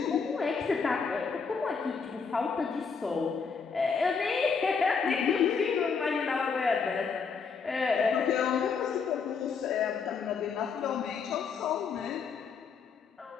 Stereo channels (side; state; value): right; quieter; 5.6 dB